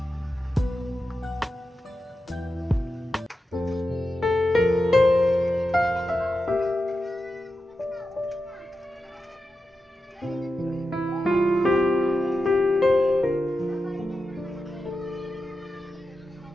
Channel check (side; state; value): both; normal; correlation 0.90